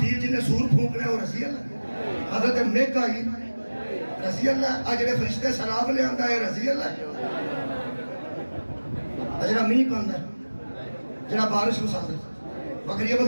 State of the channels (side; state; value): both; inverted; correlation -1.00